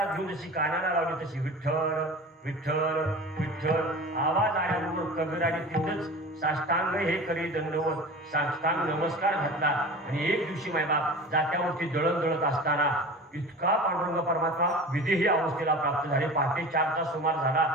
घेऊन जशी कानाला लावली तशी विठ्ठल विठ्ठल विठ्ठल आवाज आल्याबरोबर कबीराने तिथंच साष्टांग हे करी दंडवत साष्टांग नमस्कार घातला. आणि एक दिवशी मायबाप जात्यावरती दळत असताना इतका पांडुरंग परमात्मा विदेही अवस्थेला प्राप्त झाले. पहाटे 4चा सुमार झाला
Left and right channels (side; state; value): both; normal; correlation 0.35